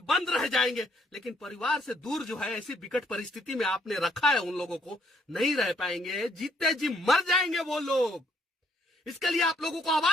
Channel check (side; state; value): both; normal; correlation 0.68